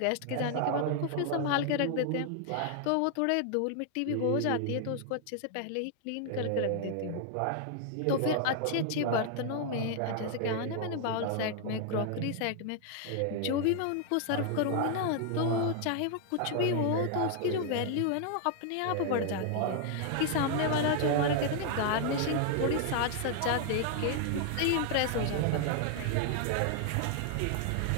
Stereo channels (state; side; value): different; both; correlation 0.00